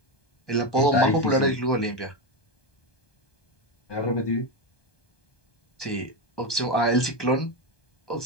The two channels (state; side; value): late; right; 1.2 ms